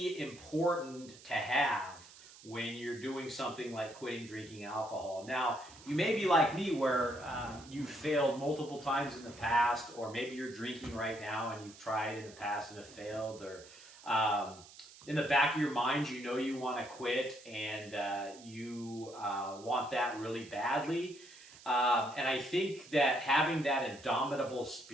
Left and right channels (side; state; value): right; noise; hiss, 20 dB below the sound